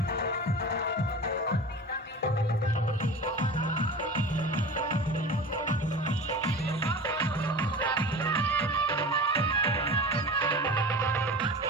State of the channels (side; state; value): both; normal; correlation 0.34